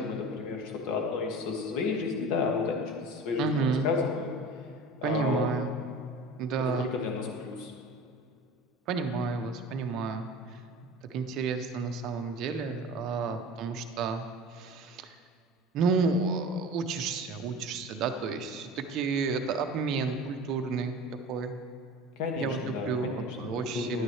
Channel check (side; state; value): both; normal; correlation 0.37